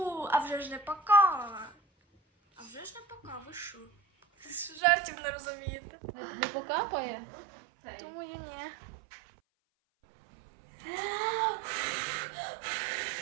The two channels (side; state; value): left; drops out; at 4.8 s